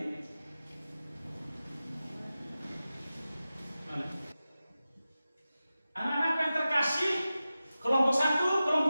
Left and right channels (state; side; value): inverted; both; correlation -0.94